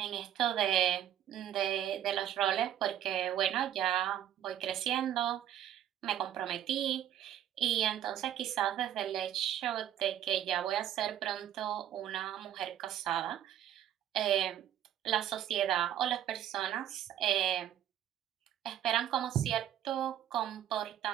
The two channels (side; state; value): left; quieter; 11.1 dB